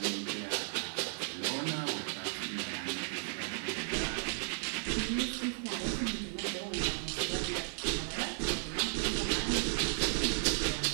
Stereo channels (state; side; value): silent; left; 55 dB below the other